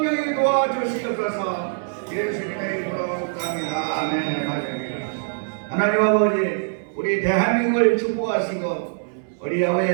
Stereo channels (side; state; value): left; silent; digital silence